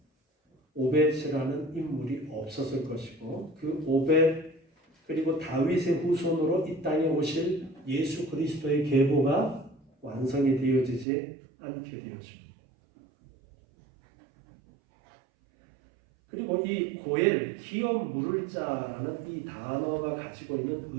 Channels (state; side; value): drops out; left; at 11.1 s